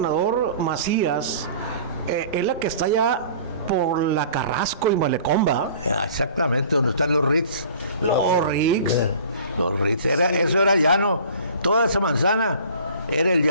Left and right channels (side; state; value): both; inverted; correlation -0.46